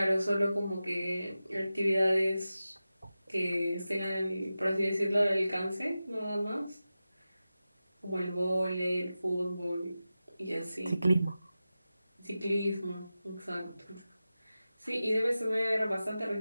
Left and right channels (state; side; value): inverted; both; correlation -0.94